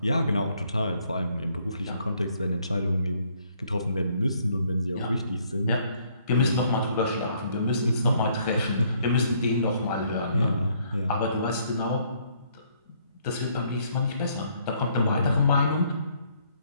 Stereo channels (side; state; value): both; inverted; correlation -0.66